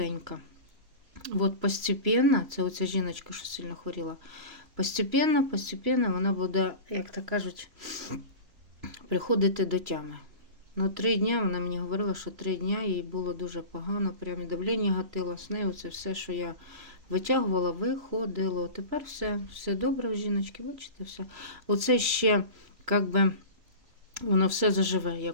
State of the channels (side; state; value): left; late; 3.0 ms